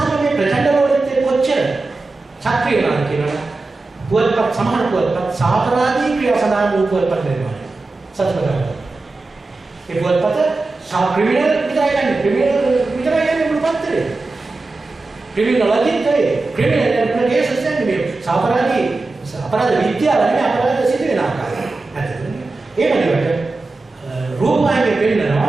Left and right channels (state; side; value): quieter; left; 3.4 dB